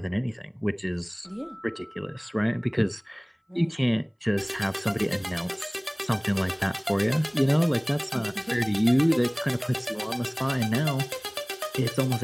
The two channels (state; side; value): identical; both; correlation 1.00